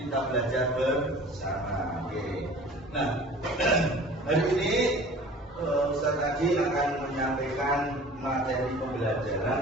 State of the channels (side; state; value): both; normal; correlation 0.45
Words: belajar bersama. Oke. Nah, hari ini Ustaz tadi akan menyampaikan materi